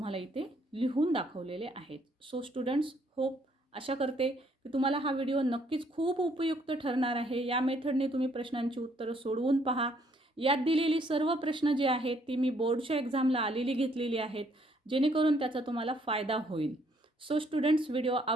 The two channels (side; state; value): both; normal; correlation 0.67